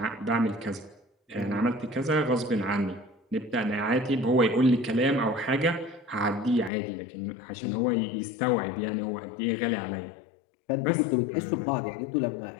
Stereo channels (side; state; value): right; drops out; at 6.7 s